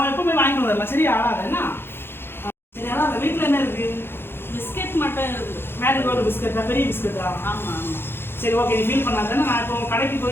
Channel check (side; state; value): right; late; 0.11 ms